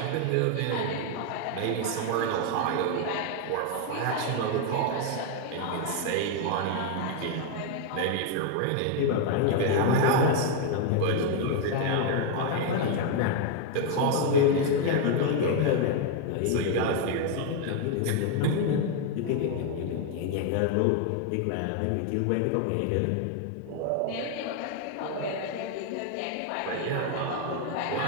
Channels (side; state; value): both; different; correlation 0.01